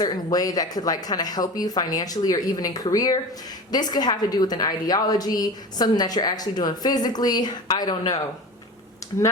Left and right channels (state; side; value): normal; both; correlation 0.32